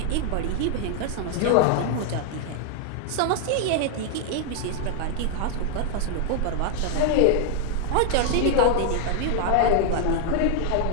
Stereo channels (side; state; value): both; different; correlation 0.00